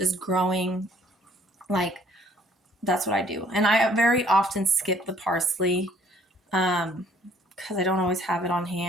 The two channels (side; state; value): both; normal; correlation 0.60